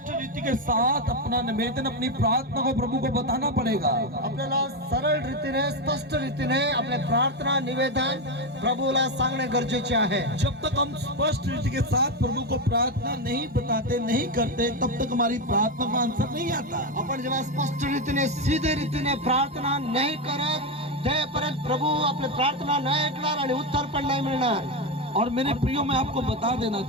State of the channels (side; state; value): both; normal; correlation 0.11